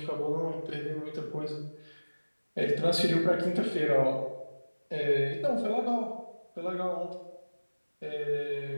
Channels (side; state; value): both; inverted; correlation -1.00